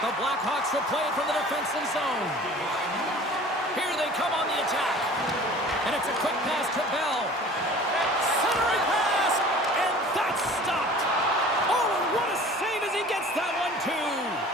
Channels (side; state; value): both; normal; correlation 0.45